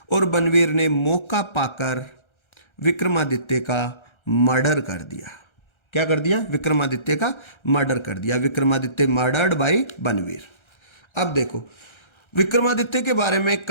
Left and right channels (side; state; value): right; late; 1.3 ms